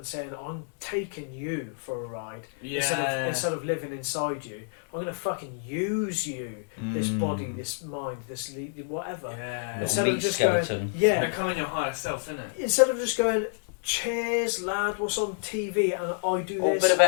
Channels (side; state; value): right; silent; digital silence